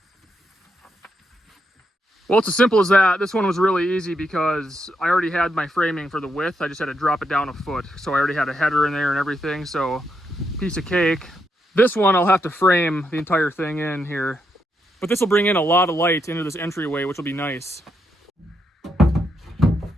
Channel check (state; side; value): normal; both; correlation 0.80